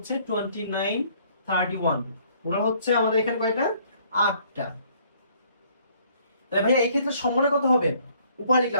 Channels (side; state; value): both; inverted; correlation -0.61